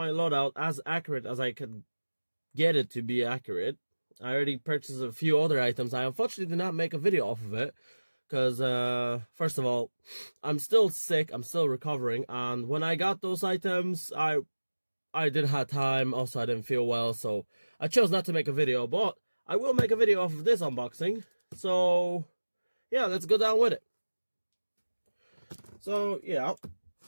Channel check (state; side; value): inverted; both; correlation -1.00